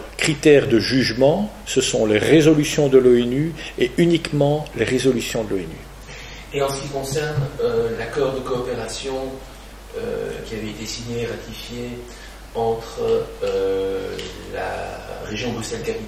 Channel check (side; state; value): both; identical; correlation 1.00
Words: critère de jugement, ce sont les résolutions de l'ONU et uniquement les résolutions de l'ONU. Et en ce qui concerne l'accord de coopération qui avait été signé et ratifié entre la région